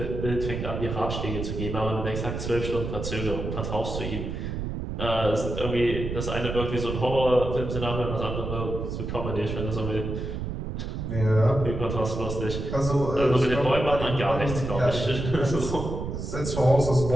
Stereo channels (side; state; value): right; noise; rumble, 5 dB below the sound